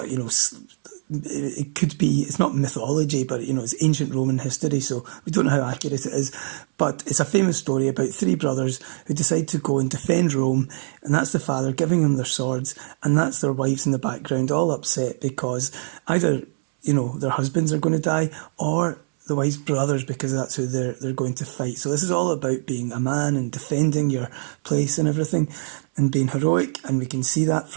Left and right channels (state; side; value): silent; left; 63 dB below the other